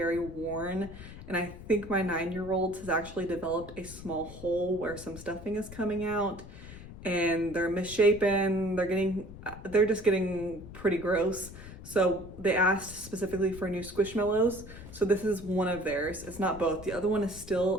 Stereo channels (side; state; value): left; noise; rumble, 14 dB below the sound